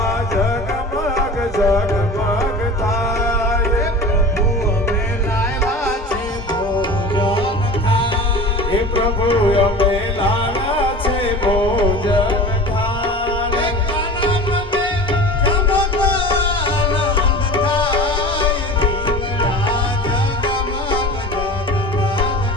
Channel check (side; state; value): both; normal; correlation 0.36